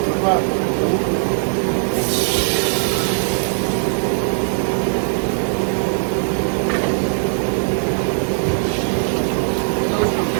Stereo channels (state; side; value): silent; left; digital silence